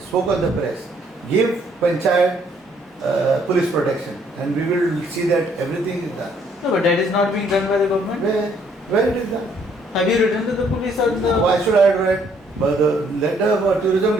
on the press, give panchayat police protection, and we will see that everything is done. No, but that is not being done by the government. Where it is done? Have you written to the police or the? Why should I write? But let the tourism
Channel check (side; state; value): both; normal; correlation 0.66